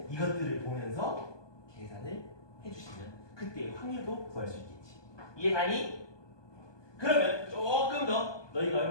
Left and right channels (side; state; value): right; late; 1.2 ms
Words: 이것들을 보면서 계산을 해주시면 그때 확률도 구할 수 있겠지. 이해가니? 그러면 조금 더 너희가